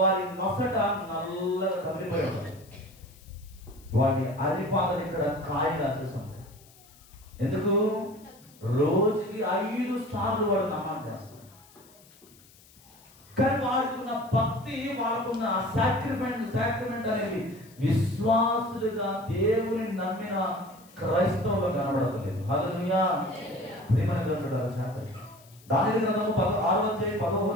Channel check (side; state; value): left; noise; hiss, 26 dB below the sound